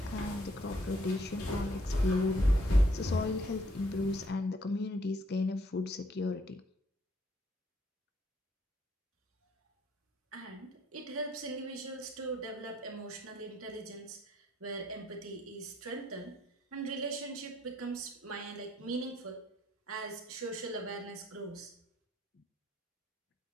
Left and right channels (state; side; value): normal; both; correlation 0.68